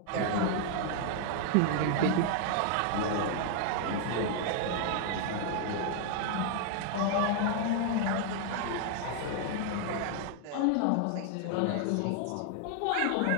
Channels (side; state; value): both; different; correlation 0.00